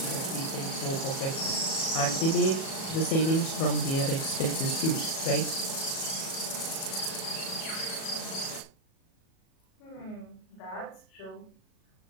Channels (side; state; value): right; late; 37 ms